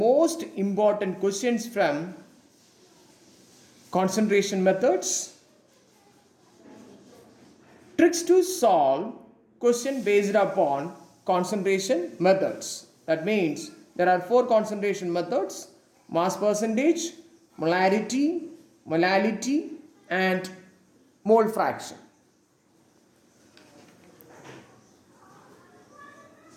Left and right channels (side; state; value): both; identical; correlation 1.00